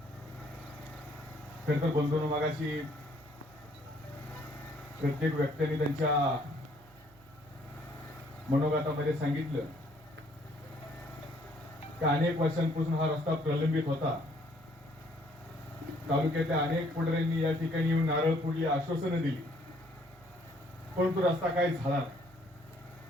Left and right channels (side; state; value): right; noise; hum, 26 dB below the sound